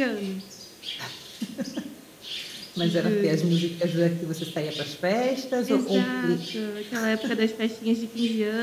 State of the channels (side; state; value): both; identical; correlation 1.00